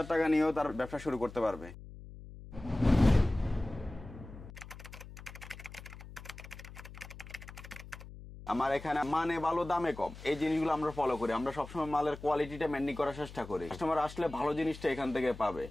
টাকা নিয়েও তার ব্যবসা শুরু করতে পারবে। আমার এখানে মানে ভালো, দামে কম, এই জিনিসগুলো আমরা ফলো করি। আমরা সবসময় মালের কোয়ালিটিটা মেনটেন করার চেষ্টা করি। কাস্টমার আসলে ভালো জিনিসটা এখান থেকে পাবে।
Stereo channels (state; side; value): noise; left; hum, 15 dB below the sound